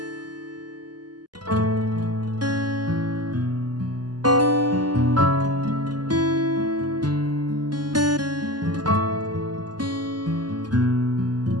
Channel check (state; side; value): late; left; 0.70 ms